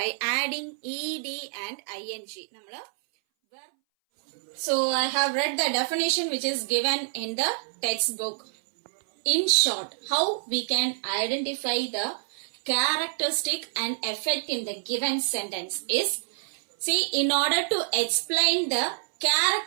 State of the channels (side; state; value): left; silent; 60 dB below the other